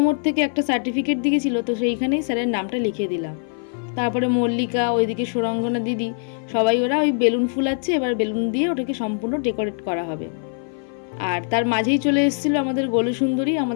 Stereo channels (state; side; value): silent; right; 56 dB below the other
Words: থেকে একটা সার্টিফিকেট দিয়েছিল, তো সেইখানেই স্যারের নামটা লিখে দিলাম। তারপরে মল্লিকা, ওইদিকে সুরঙ্গনা দিদি, সবাই ওরা ওই বেলুন ফুলাচ্ছে, এবার বেলুন দিয়ে ওটাকে সম্পূর্ণ ডেকোরেট করা হবে। আর তার মাঝেই চলে এসেছিলো আমাদের গোলু সুন্দরী,